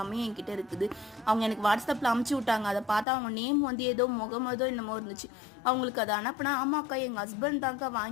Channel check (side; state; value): right; drops out; at 3.1 s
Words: என்கிட்ட இருக்குது. அவங்க எனக்கு வாட்ஸ்அப்பில் அமுச்சு விட்டாங்க. அதை பார்த்தா அவங்க நேம் ஏதோ முகமதோ என்னமோ இருந்துச்சு. அவங்களுக்கு அதை அனுப்புனா, ஆமாக்கா எங்கள் ஹஸ்பண்ட் தாங்க